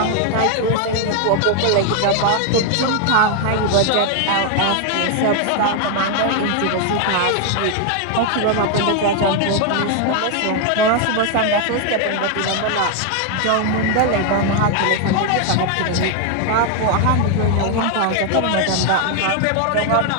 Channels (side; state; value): both; different; correlation 0.01